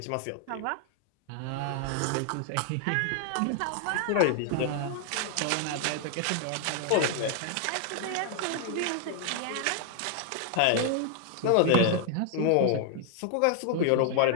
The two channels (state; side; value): different; both; correlation 0.00